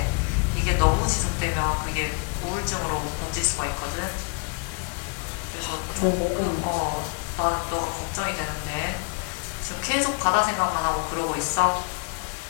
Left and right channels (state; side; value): quieter; right; 34.4 dB